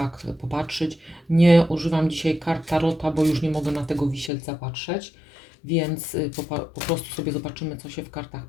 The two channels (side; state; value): right; drops out; at 4.3 s